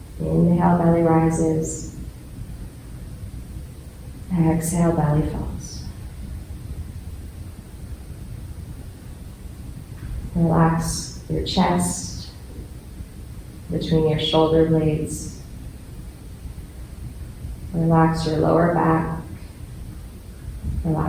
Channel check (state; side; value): identical; both; correlation 1.00